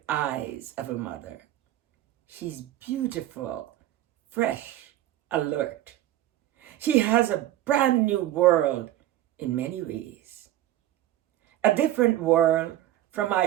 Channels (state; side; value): quieter; left; 13.6 dB